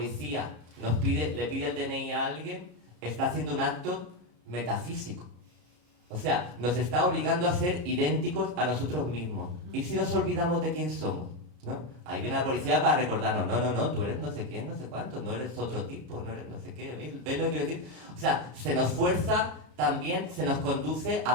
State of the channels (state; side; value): late; left; 33 ms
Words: le pide el DNI a alguien, está haciendo un acto metafísico. O sea, nos está obligando a ser idénticos a nosotros mismos. ¿Y si nos olvidamos de quién somos? ¿No? Ahí viene la policía para recordarnos, no, tú eres no sé quién, no sé cuánto, no eres otro tipo, no eres no sé qué, ¿ves lo que quiero decir? O sea, se nos fuerza también, se nos conduce